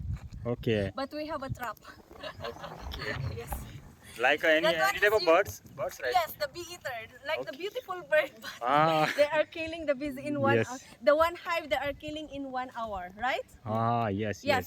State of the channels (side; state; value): both; identical; correlation 1.00